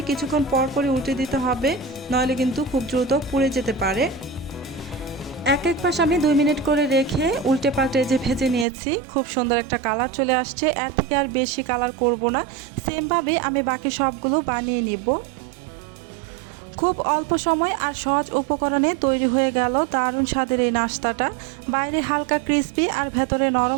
কিছুক্ষণ পর পরই উল্টে দিতে হবে, নইলে কিন্তু খুব দ্রুত পুড়ে যেতে পারে। এক পাশ আমি 2 মিনিট করে রেখে উল্টে পাল্টে যে ভেজে নিয়েছি, খুব সুন্দর একটা কালার চলে আসছে। এর থেকে আর বেশি কালার করব না, সেমভাবে আমি বাকি সবগুলো বানিয়ে নিব। খুব অল্প সময় আর সহজ উপকরণে তৈরি হয়ে গেল দারুণ স্বাদের এই নাস্তাটা। বাইরে হালকা ক্রিসপি আর ভেতরে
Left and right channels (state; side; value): drops out; left; at 8.7 s